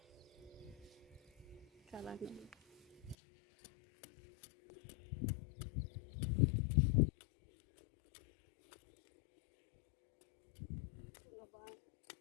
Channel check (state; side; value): drops out; right; at 3.2 s